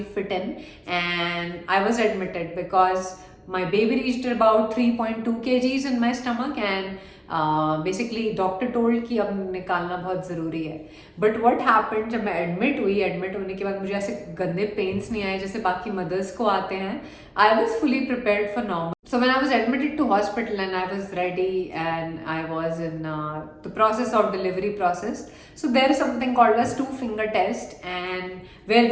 fit in, and I was admitted because my baby reached about 3.2 kgs in my stomach, and basically doctor told कि अब निकालना बहुत ज़रूरी है। But what happened, जब मैं admit होने के बाद मुझे ऐसे गंदे पेन्स नहीं आए जैसे बाकी मदर्स को आते हैं। I was fully prepared for normal. So when I was admitted to hospital and I was ready and I was in the process of delivery process, so there is something called as 2-finger test, and where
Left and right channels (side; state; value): both; identical; correlation 1.00